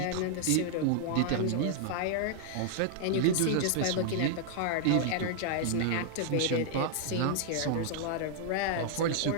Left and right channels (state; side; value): different; both; correlation -0.01